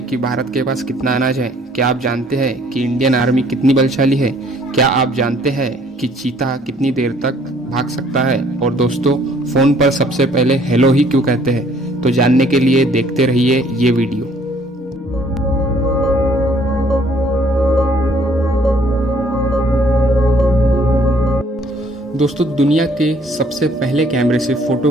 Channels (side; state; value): both; normal; correlation 0.61